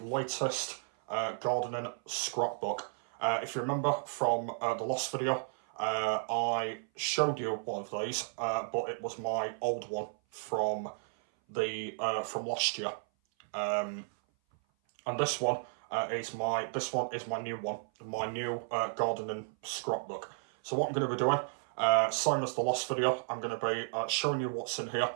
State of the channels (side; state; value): left; silent; 56 dB below the other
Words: gardening scrapbook. If you remember from the last video, I showed you one of these, but it was my old one from last year. And this one is my new one, my new gardening scrapbook. So what I'm going to be doing, same as the last video, I'm going to be showing you what's in here